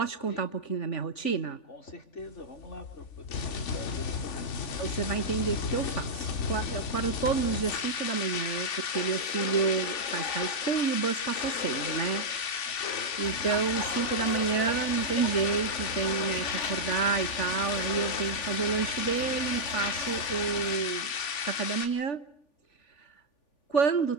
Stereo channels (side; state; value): right; late; 3.5 ms